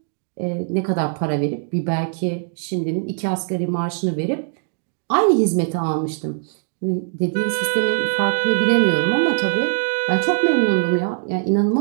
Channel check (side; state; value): left; silent; digital silence